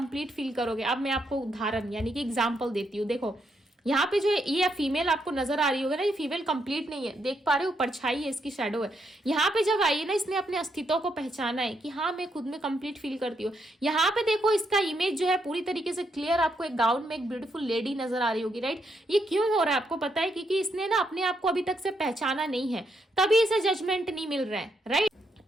फील करोगे। अब मैं आपको उदाहरण यानी कि एग्जाम्पल देती हूँ। देखो यहाँ पे जो ये फीमेल आपको नजर आ रही होगी ना, ये फीमेल कंप्लीट नहीं है, देख पा रहे हो, परछाई है, इसकी शैडो है। यहाँ पे जब आई है ना, इसने अपने अस्तित्व को पहचाना है कि हाँ मैं खुद में कंप्लीट फील करती हूँ। यहाँ पे देखो इसका इमेज जो है पूरी तरीके से क्लियर, आपको एक गाउन में एक ब्यूटीफुल लेडी नजर आ रही होगी, राइट। ये क्यों हो रहा है आपको पता है, क्योंकि इसने ना अपने आप को अभी तक से पहचाना नहीं है, तभी इसे जजमेंट नहीं मिल रहा है, राइट।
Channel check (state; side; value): normal; both; correlation 0.78